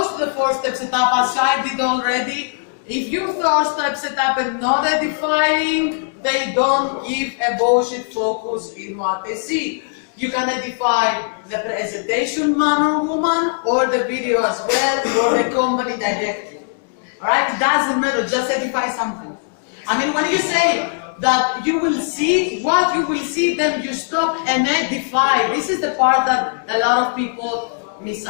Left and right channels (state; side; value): silent; right; digital silence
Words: to the 4-step setup as I did already. If you 4-step setup and not edifying, they don't give a bullshit focus in what they see. You can edify the presentation man or woman, or the video as well, or the company directly. Alright, it doesn't matter, just edify something. I mean, when you say that you will see what you will see, then you stop and edify. This is the part that a lot of people miss